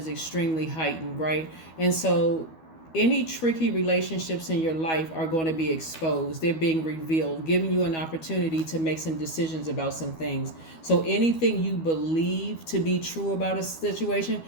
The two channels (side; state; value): right; late; 12 ms